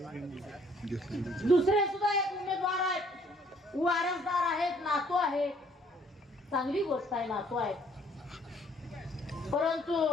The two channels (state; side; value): normal; both; correlation 0.63